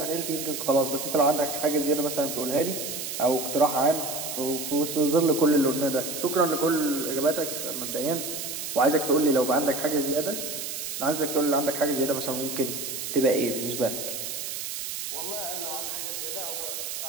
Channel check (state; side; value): noise; right; hiss, 5 dB below the sound